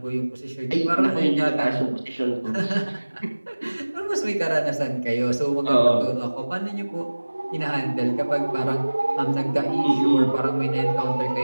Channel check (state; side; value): inverted; both; correlation -1.00